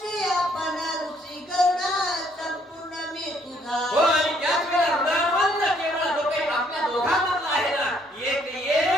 आपण ऋषी करुणा संपूर्ण मी तुझा हो आणि त्याच वेळेला हृदयवंत केवळ जो काही आपल्या दोघांमधला आहे ना एक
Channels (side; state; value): both; normal; correlation 0.66